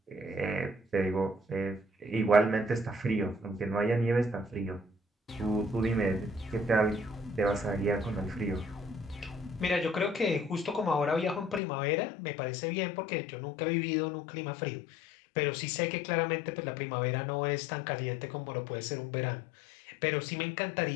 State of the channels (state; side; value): drops out; right; at 11.6 s